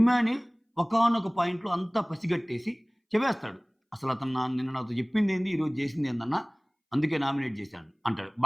ఒకానొక పాయింట్‌లో అంతా పసిగట్టేసి చెప్పేస్తాడు. "అసలతను నిన్న నాతో చెప్పిందేంది, ఈరోజు చేసిందేందన్నా? అందుకే నామినేట్ చేశాను" అంటాడు.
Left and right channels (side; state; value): both; identical; correlation 1.00